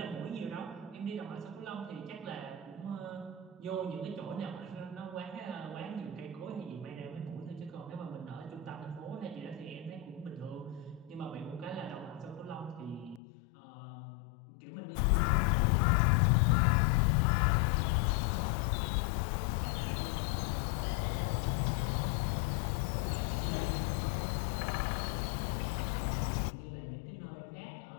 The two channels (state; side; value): drops out; right; at 13.2 s